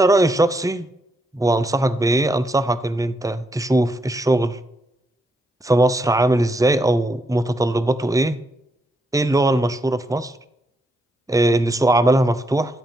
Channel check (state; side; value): normal; both; correlation 0.79